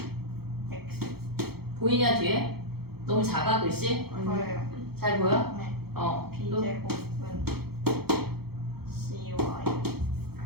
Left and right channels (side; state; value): left; late; 0.96 ms